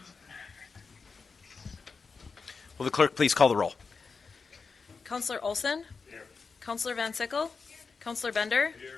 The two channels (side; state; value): right; quieter; 4.9 dB